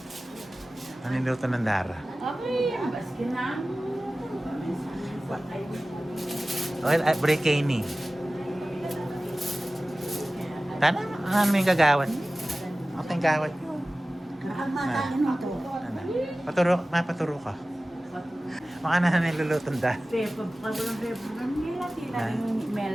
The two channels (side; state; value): both; normal; correlation 0.97